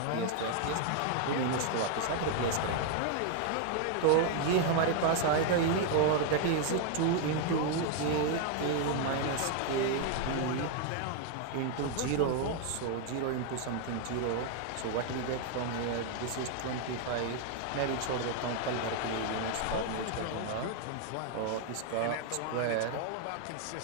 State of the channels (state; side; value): different; both; correlation 0.00